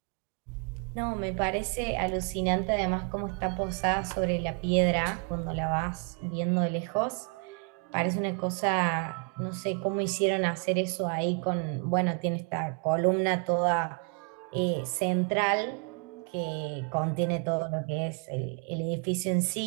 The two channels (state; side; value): quieter; left; 38.0 dB